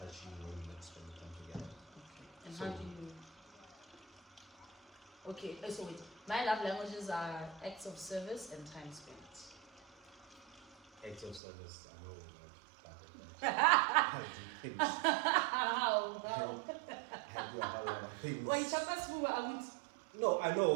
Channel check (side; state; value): left; drops out; at 11.4 s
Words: touch you when we come together. Okay. And how do you? Okay, so wait. My love languages are acts of service and time spent. Acts of service, I know, I do things. How? I do a whole lot of things. Why, Chapas, who are we? No, I